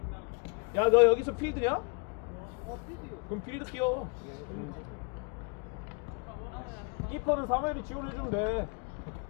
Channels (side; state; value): right; quieter; 34.7 dB